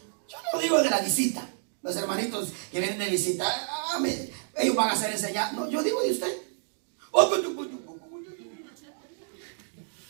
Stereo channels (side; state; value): left; silent; digital silence